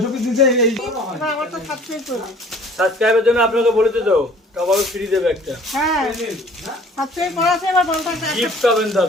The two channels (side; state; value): both; normal; correlation 0.51